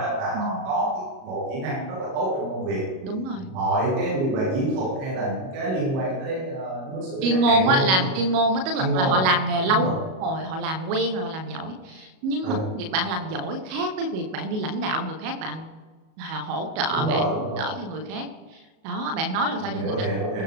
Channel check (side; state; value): left; late; 37 ms